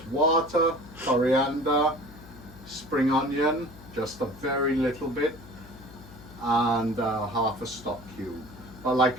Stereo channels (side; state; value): left; noise; hum, 19 dB below the sound